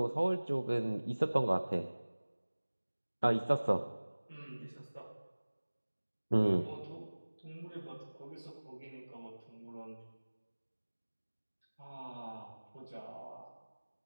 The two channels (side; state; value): both; inverted; correlation -1.00